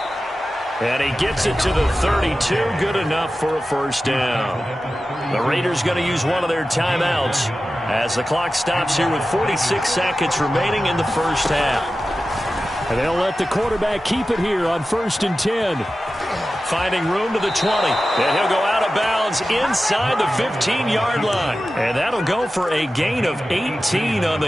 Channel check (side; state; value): both; normal; correlation 0.94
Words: And he gets it to the 32, good enough for a 1st down. The Raiders going to use one of their timeouts as the clock stops here with 46 seconds remaining in the 1st half. And they'll let the quarterback keep it here on 1st and 10. Finding room to the 20. And he'll go out of bounds inside the 15-yard line. And that'll go for a gain of 18 on